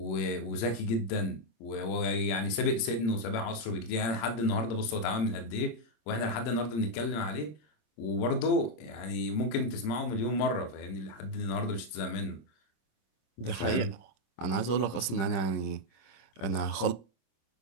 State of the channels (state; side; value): late; right; 26 ms